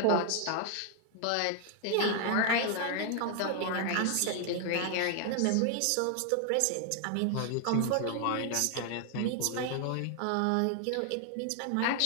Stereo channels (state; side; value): different; both; correlation 0.00